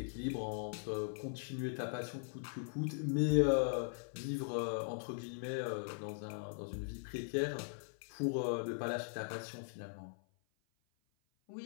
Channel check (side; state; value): right; silent; 51 dB below the other